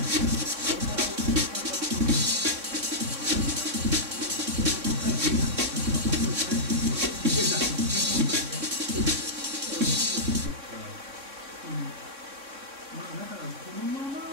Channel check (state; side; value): late; left; 3.6 ms